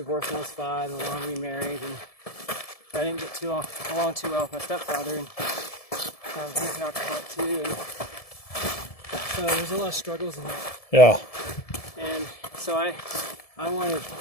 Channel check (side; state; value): right; late; 1.7 ms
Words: when I was 5, and long remarried, and I didn't get along too well with my stepfather, and he's an alcoholic too. And so there's a lot of struggles in that. Yeah. And so I wanted